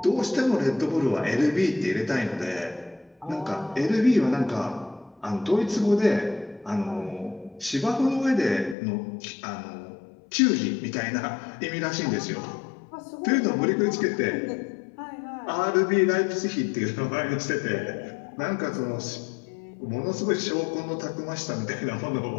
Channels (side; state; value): right; drops out; at 8.8 s